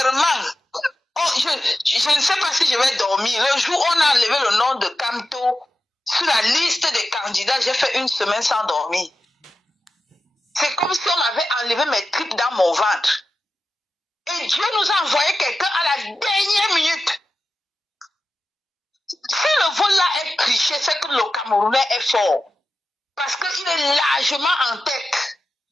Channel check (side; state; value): both; normal; correlation 0.92